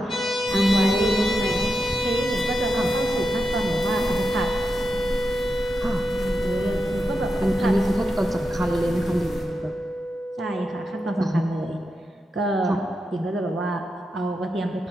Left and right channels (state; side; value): normal; both; correlation 0.88